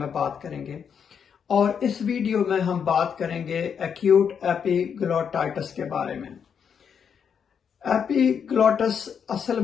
बात करेंगे और इस वीडियो में हम बात करेंगे एक्यूट एपिग्लोटाइटिस के बारे में। एपिग्लोटिस असल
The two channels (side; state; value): right; quieter; 7.3 dB